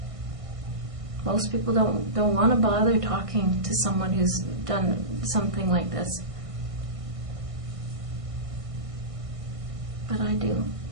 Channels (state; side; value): late; left; 1.6 ms